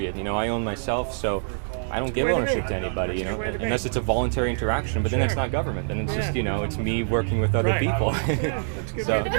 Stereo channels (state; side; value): silent; left; digital silence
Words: I own myself. So I don't give ownership to anybody. Unless it's a voluntary interaction. But then it's not government. Then it's just it's me working with other people. So